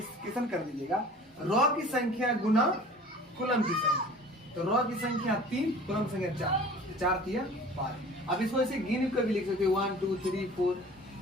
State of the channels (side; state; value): both; normal; correlation 0.44